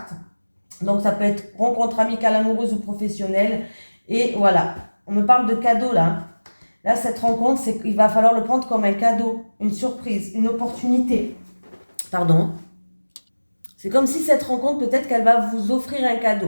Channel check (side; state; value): both; inverted; correlation -1.00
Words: Donc, ça peut être rencontre amicale, amoureuse ou professionnelle. Et voilà, on me parle de cadeau là. Là, cette rencontre, c'est qu'il va falloir le prendre comme un cadeau, une surprise, une opportunité. Pardon. C'est comme si cette rencontre, peut-être qu'elle va vous offrir un